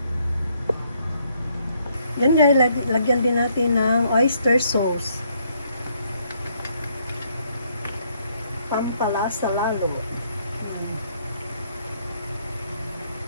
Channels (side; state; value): both; inverted; correlation -0.70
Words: Yan guys, lagyan din natin ng oyster sauce. Pampalasa lalo.